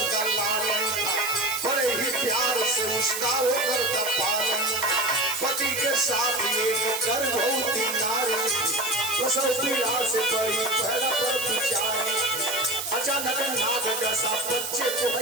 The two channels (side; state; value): right; noise; hiss, 5 dB below the sound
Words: का लालन था, बड़े ही प्यार से उसका वो करता पालन। पति के साथ एक गर्भवती नारी, प्रसव पीड़ा से बड़ी पहला पर विचारी। अचानक नाग जैसा बच्चे को